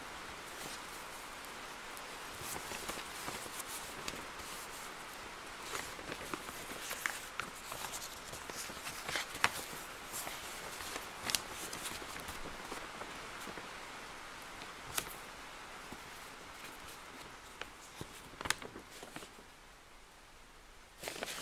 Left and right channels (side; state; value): both; identical; correlation 1.00